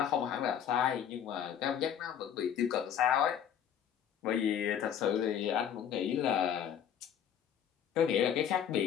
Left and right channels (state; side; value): quieter; right; 9.1 dB